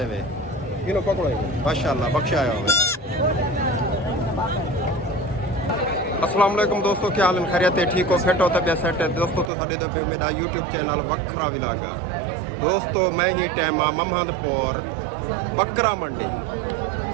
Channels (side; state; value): left; drops out; at 9.5 s